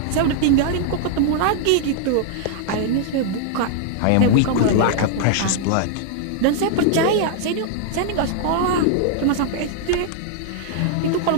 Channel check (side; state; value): both; different; correlation -0.01